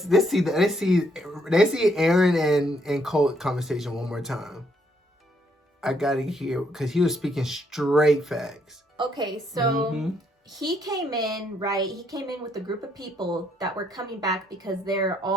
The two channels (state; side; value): normal; both; correlation 0.72